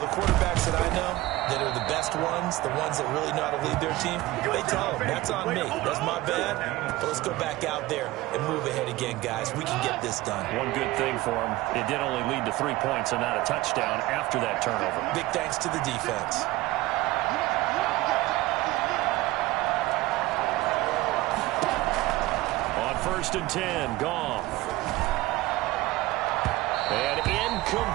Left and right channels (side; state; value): left; quieter; 18.6 dB